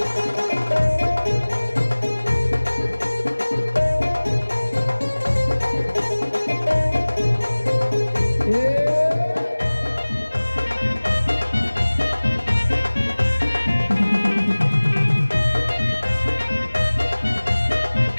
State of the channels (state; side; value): inverted; both; correlation -1.00